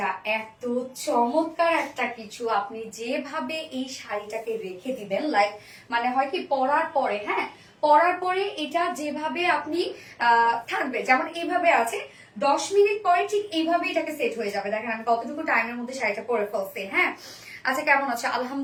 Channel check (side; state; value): both; identical; correlation 1.00